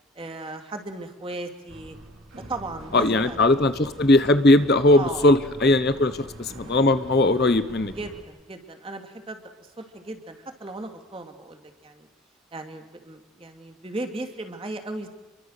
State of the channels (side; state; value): both; normal; correlation 0.45